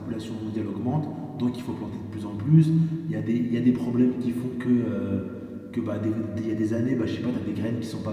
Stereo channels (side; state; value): both; identical; correlation 1.00